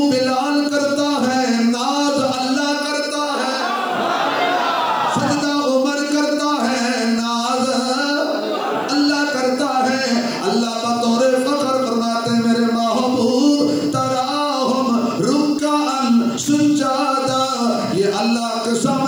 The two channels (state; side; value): noise; right; hiss, 29 dB below the sound